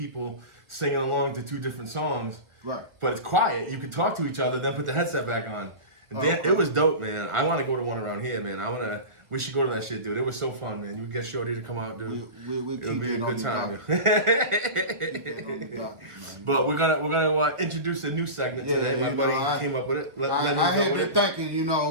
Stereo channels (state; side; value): late; left; 1.6 ms